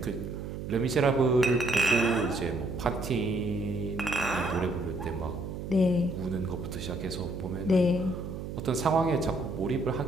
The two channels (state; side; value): noise; right; hum, 7 dB below the sound